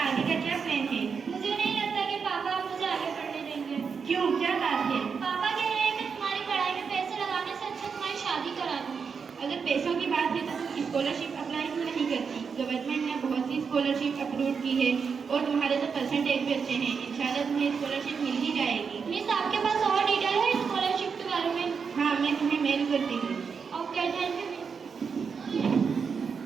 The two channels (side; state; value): left; quieter; 5.9 dB